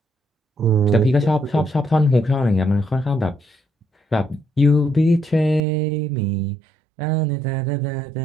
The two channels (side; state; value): left; drops out; at 5.6 s